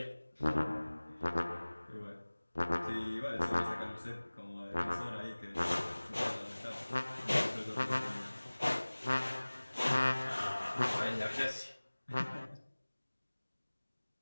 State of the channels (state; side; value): inverted; both; correlation -1.00